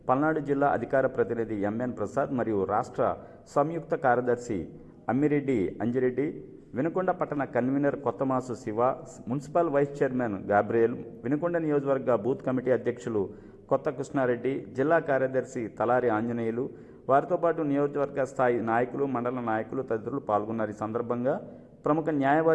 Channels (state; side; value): identical; both; correlation 1.00